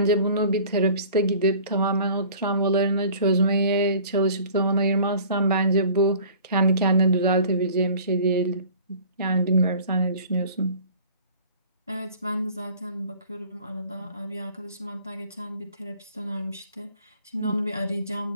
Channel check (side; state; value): both; inverted; correlation -0.47